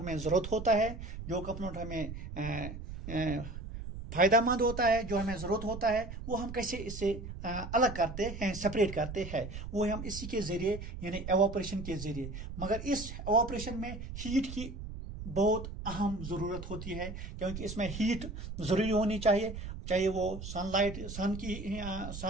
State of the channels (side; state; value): right; noise; rumble, 9 dB below the sound